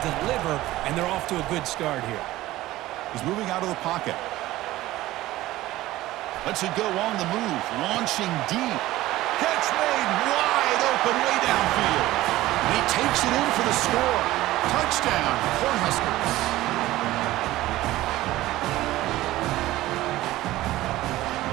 deliver, and they're off to a good start here. He's moving out of the pocket. Lets it go on the move. Launching deep. Catch made wide open way downfield. And he takes it in for the score. Touchdown, Cornhuskers.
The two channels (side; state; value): left; quieter; 16.5 dB